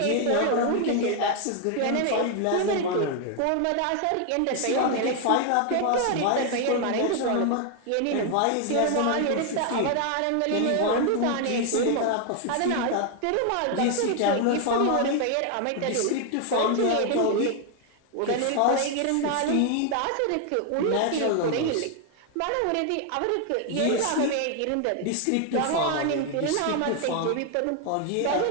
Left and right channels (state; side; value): different; both; correlation 0.00